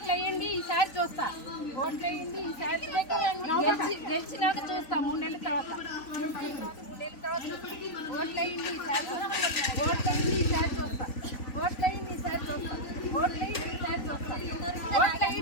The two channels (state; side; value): late; right; 3.9 ms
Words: ఓట్లు వేయండి ఈసారి చూస్తా, ఓట్లు వేయండి ఈసారి గెలిచినాక చూస్తా 3 నెలల తర్వాత, ఓట్లు వేయండి ఈసారి, ఓట్లు వేయండి ఈసారి చూస్తా, ఓట్లు వేయండి ఈసారి చూస్తా, ఓట్లు వేయండి ఈసారి చూస్తా, ఓట్లు